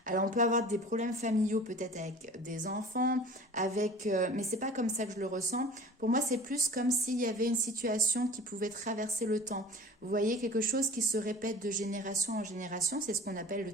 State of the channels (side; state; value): both; normal; correlation 0.42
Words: Alors on peut avoir des problèmes familiaux peut-être avec des enfants, avec, mais c'est pas comme ça que je le ressens. Pour moi, c'est plus comme s'il y avait une situation qui pouvait traverser le temps. Vous voyez, quelque chose qui se répète de génération en génération, c'est ce qu'on appelle le